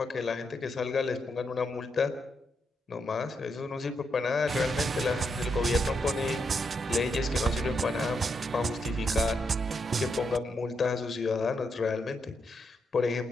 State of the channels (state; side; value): normal; both; correlation 0.81